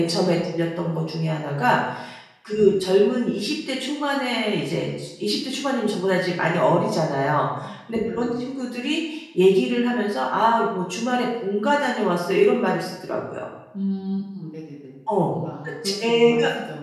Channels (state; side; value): identical; both; correlation 1.00